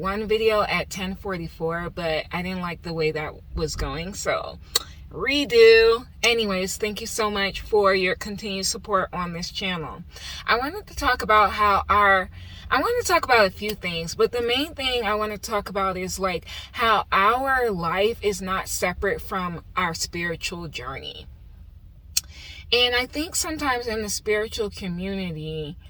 video at 10:44, but I didn't like the way that was going, so redo. Anyways, thank you so much for your continued support on this channel. I wanted to talk about a few things, but the main thing I want to talk about is like how our life is not separate from our spiritual journey. And I think sometimes in the spiritual community,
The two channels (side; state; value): both; identical; correlation 1.00